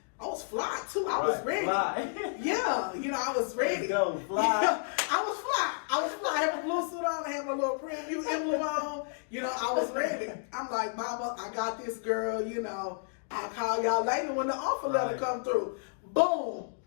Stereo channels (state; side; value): silent; right; digital silence